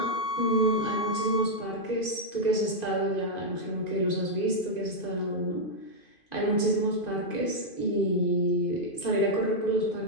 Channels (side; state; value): right; late; 2.5 ms